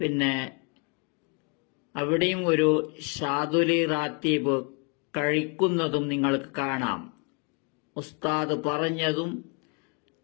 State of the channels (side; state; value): right; quieter; 34.5 dB